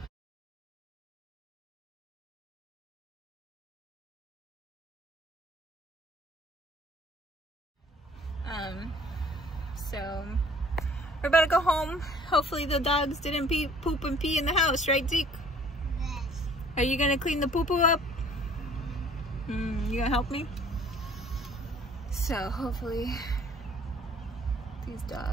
So we're about to go home. Hopefully the dogs didn't poop and pee in the house, right, Zeke? Yes. Are you gonna clean the poo-poo up? You gonna help me? So hopefully these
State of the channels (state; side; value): normal; both; correlation 0.54